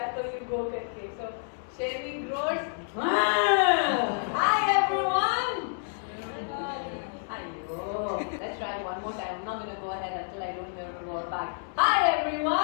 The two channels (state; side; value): silent; right; 59 dB below the other